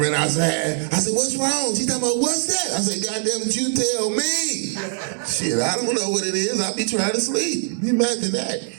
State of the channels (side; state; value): left; silent; 58 dB below the other